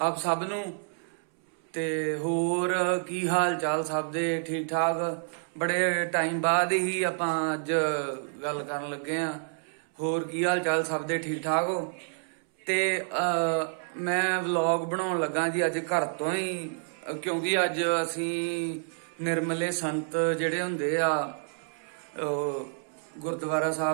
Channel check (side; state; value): left; silent; 59 dB below the other